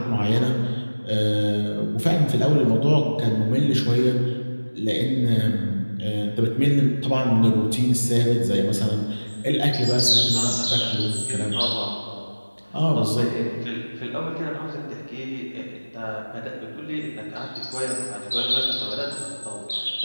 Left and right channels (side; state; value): both; inverted; correlation -1.00